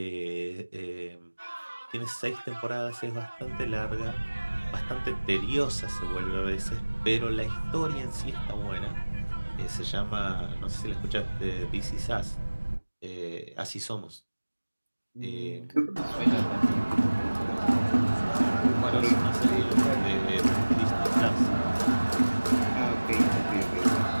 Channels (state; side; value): inverted; both; correlation -1.00